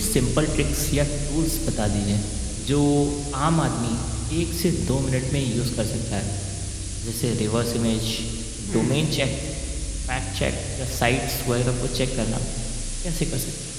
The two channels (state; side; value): identical; both; correlation 1.00